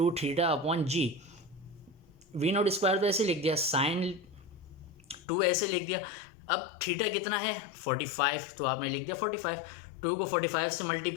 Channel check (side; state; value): right; drops out; at 5.2 s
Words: theta upon G. V naught square तो ऐसे लिख दिया, साइन 2 ऐसे लिख दिया। अब थीटा कितना है 45, तो आपने लिख दिया 45। 2 को 45 से